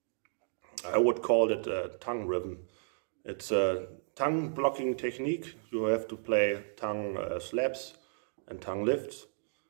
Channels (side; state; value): left; silent; digital silence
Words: I would call it a tongue rhythm. It's a tongue blocking technique. You have to play tongue slaps and tongue lifts,